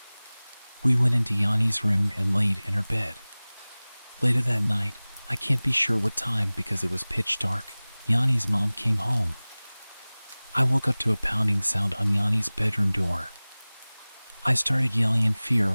We went into Yanni's room and laid in her bed. Later that night, I can't be sure what time because it was pitch dark, Yanni's mom came home. I woke up to a pounding sound on Yanni's bedroom door. I started yelling in fear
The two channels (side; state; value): both; inverted; correlation -1.00